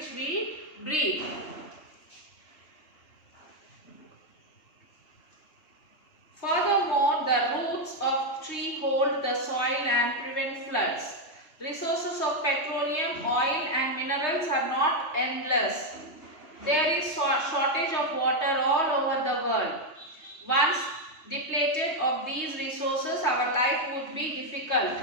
we breathe. Furthermore, the roots of tree hold the soil and prevent floods. Resources of petroleum, oil and minerals are not endless. There is shortage of water all over the world. Once depleted of these resources, our life would be difficult.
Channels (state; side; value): late; right; 3.2 ms